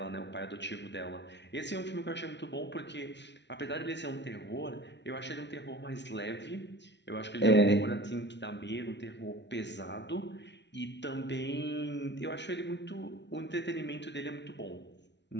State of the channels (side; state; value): right; late; 0.51 ms